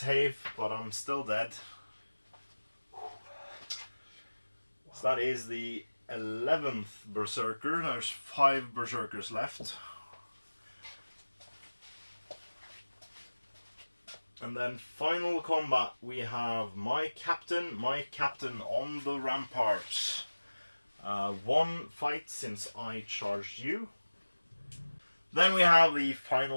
but I'm still dead. So that is the 11th Berserker. There's 5 Berserkers left. And then final combat, we have my captain on the ramparts. 1 fight since I charged you. Then we have the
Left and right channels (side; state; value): both; inverted; correlation -1.00